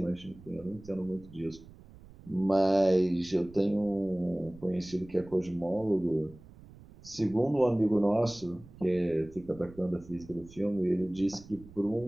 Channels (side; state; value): right; noise; rumble, 20 dB below the sound